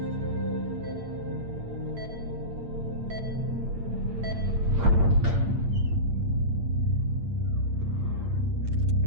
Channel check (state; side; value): late; left; 8.8 ms